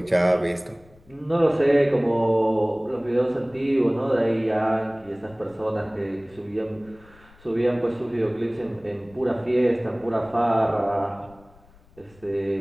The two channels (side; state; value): left; noise; rumble, 27 dB below the sound